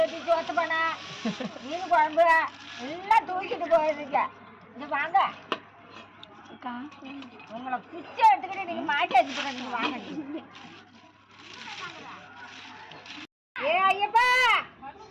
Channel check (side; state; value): both; identical; correlation 1.00